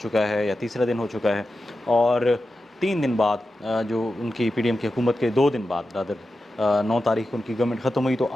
چکا ہے یا تیسرا دن ہو چکا ہے، اور 3 دن بعد جو ان کی پی ڈی ایم کی حکومت کے 2 دن بعد 9 تاریخ کو ان کی گورنمنٹ ختم ہوئی، تو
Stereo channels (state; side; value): normal; both; correlation 0.91